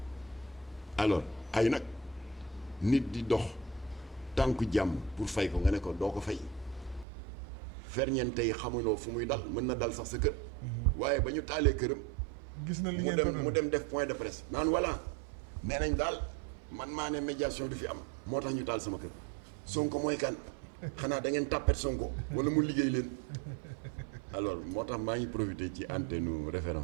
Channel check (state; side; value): drops out; left; at 7.1 s